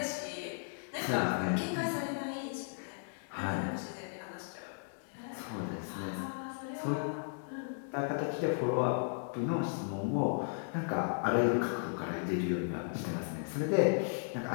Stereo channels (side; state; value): right; silent; digital silence